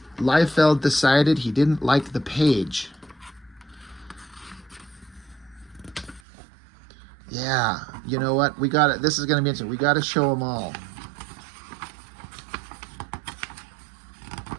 Liefeld decided he didn't like the page. Yeah, you know what? We got it. This is going to be interesting. We got to show them all.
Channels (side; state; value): left; drops out; at 6.2 s